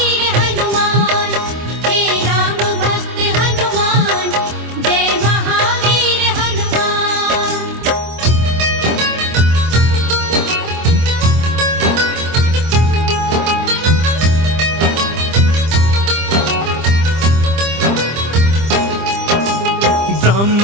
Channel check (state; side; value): late; left; 25 ms